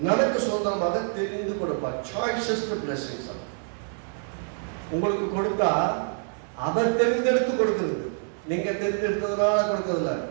நமக்கு சுதந்திரமாக தெரிந்து கொடுப்பார். சாய்ஸஸ் தி பிளெஸிங்ஸ். உங்களுக்கு கொடுத்தா அவர் தெரிந்தெடுத்து கொடுக்குது, நீங்க தெரிந்தெடுத்ததுனால கொடுக்கறதில்ல.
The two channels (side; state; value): left; silent; 61 dB below the other